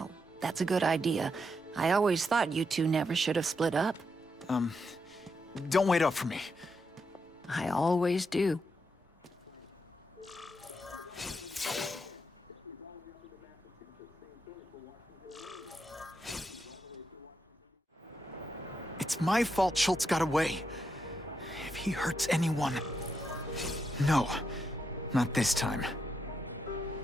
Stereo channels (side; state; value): both; normal; correlation 0.82